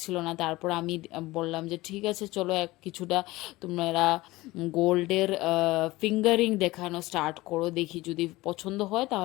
না। তারপর আমি বললাম যে ঠিক আছে চলো কিছুটা তোমরা গোল্ডের ফিঙ্গারিং দেখানো স্টার্ট করো, দেখি যদি পছন্দ হয়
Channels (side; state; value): right; quieter; 19.5 dB